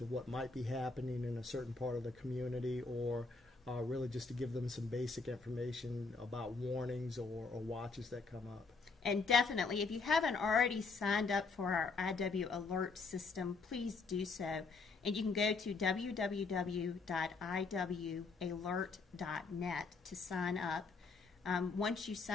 what might be happening in a certain part of the community, or really just to give them some basic information about warnings or watches that come up. And definitely, if you haven't already signed up for our IW alert system, please do so. And you can go to www.iwalert.net to sign up. Once you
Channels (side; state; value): right; quieter; 4.3 dB